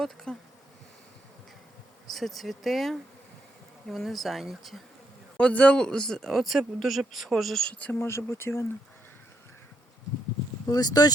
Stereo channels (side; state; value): both; normal; correlation 0.78